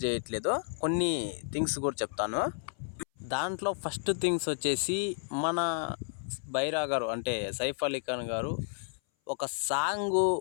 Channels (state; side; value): silent; right; 57 dB below the other